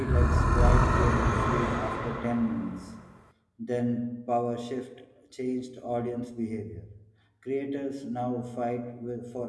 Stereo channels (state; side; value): identical; both; correlation 1.00